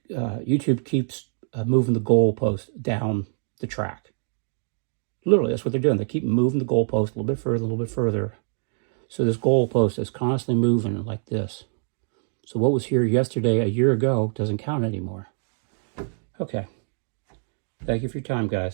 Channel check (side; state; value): left; silent; 62 dB below the other